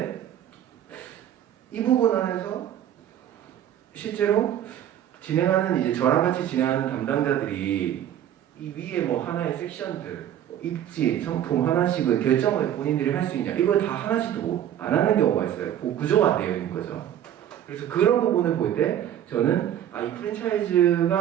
이 부분 안에서 실제로 진행하는 이제 저랑 같이 진행하는 담당자들이 이 위에 뭐 하나의 섹션들 입지, 상품 하나씩은 결정을 본인들이 할 수 있냐 이걸 다 하나씩도 안 하는 경우가 있어요. 구조가 안 되어 있는 거죠. 그래서 그런 부분을 볼 때 저는 이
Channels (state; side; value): quieter; left; 10.8 dB